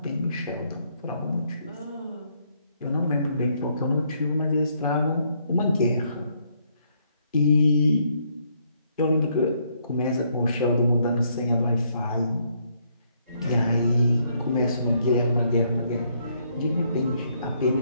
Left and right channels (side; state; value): both; inverted; correlation -0.72